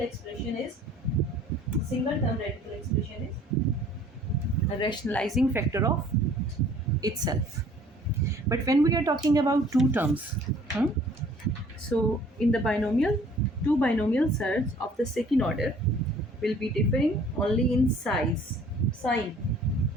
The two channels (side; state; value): both; normal; correlation 0.54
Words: is, single term radical expression is a rationalizing factor of itself. But when we are talking about two terms, so in the binomial, two binomial surds of the second order will be differing only in sign,